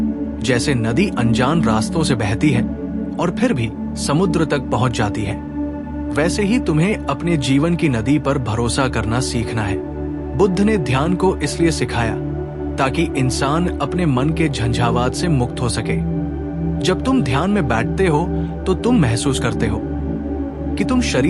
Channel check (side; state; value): both; identical; correlation 1.00